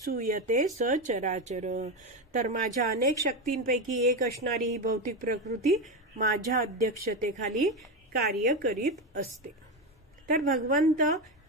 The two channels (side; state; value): both; normal; correlation 0.14